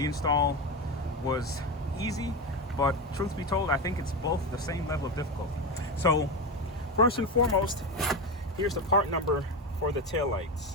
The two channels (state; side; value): normal; both; correlation 0.18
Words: install was easy. But truth be told, I think it's both the same level of difficulty. So first and foremost, here's the part number for the